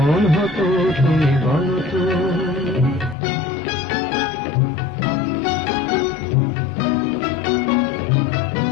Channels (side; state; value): right; drops out; at 3.2 s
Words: হতো তুমি বলো তো?